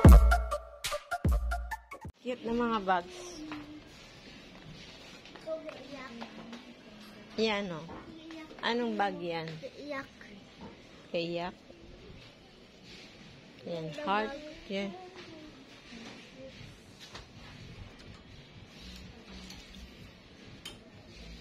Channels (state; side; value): identical; both; correlation 1.00